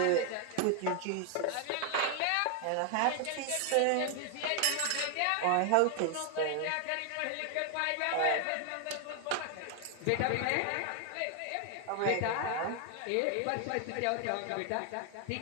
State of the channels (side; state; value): both; different; correlation 0.00